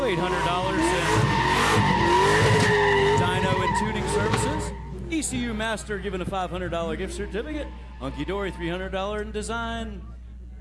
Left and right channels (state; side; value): identical; both; correlation 1.00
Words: $800 in dyno and tuning services. ECU Master giving a $500 gift certificate. Hunky Dory, $300 in design